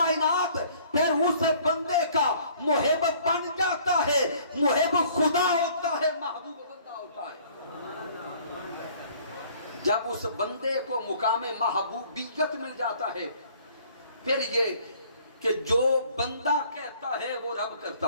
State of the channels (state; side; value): inverted; both; correlation -0.56